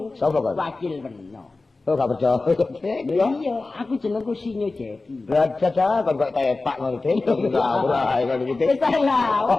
Sapa kok? wakil Weno. Oh gak percaya. Iya, aku jenengku Sinyo Jeki. Lah jaja kon kok tepak ngono iki. Ora ae ngono iki. Wis ta lah.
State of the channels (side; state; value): right; quieter; 3.5 dB